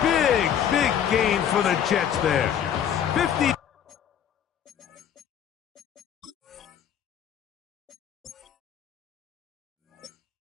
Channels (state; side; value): quieter; right; 9.1 dB